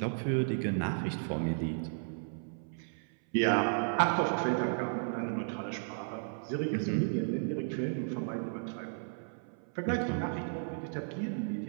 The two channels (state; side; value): silent; left; 55 dB below the other